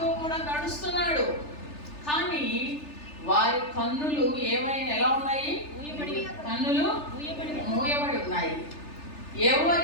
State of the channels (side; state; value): right; late; 3.3 ms